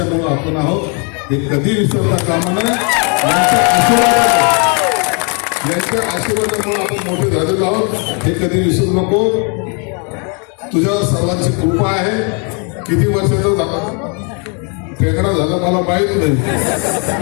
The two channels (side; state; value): right; quieter; 36.7 dB